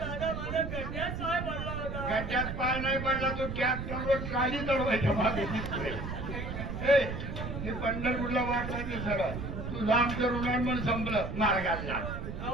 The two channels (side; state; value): right; noise; rumble, 6 dB below the sound